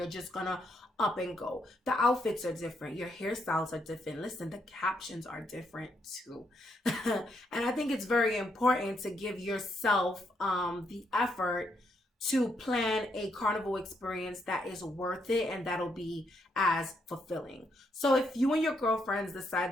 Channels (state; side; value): normal; both; correlation 0.77